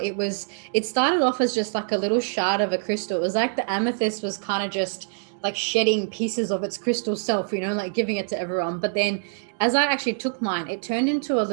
started off as just like a little shard of a crystal. It was like the amethyst was kind of just like shedding pieces of its crystal self, like giving it to everyone. But then as I actually took mine, it turned into a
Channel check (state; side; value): silent; left; digital silence